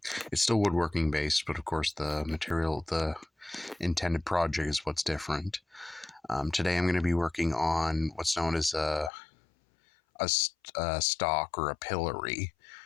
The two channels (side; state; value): right; drops out; at 9.1 s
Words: It's still woodworking based, but of course the material, the intended project is what's different. Today I'm going to be working on what's known as a stock or a pillory.